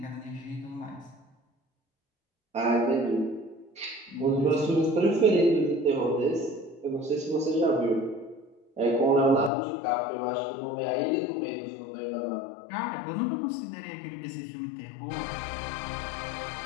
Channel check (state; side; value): drops out; right; at 9.5 s